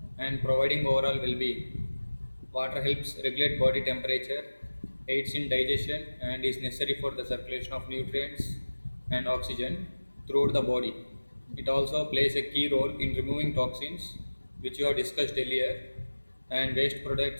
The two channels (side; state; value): both; inverted; correlation -1.00